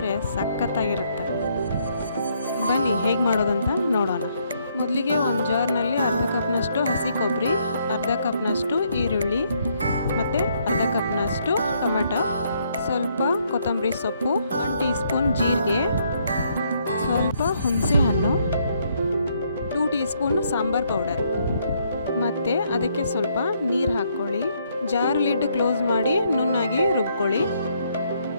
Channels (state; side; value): inverted; both; correlation -0.71